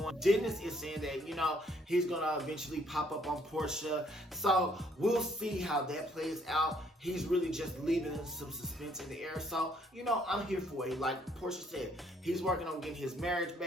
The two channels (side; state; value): both; normal; correlation 0.66